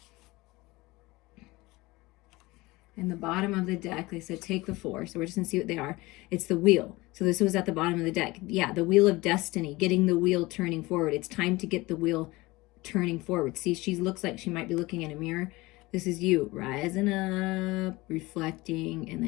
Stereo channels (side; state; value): right; quieter; 21.3 dB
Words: In the bottom of the deck, they said take the 4. So we're just going to see what they are. It's the wheel. So this was at the bottom of the deck. Yeah, the wheel of destiny, getting the wheel turning forward. It's time to get the wheel turning forward. See, she looks like she might be looking in a mirror. This is you rising up, reflecting, and